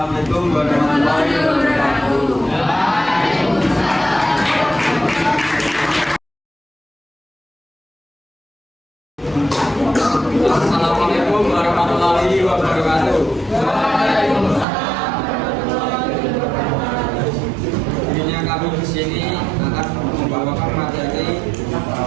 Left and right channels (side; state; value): left; drops out; at 14.7 s